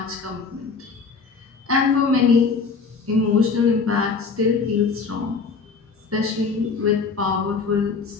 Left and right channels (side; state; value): right; quieter; 4.8 dB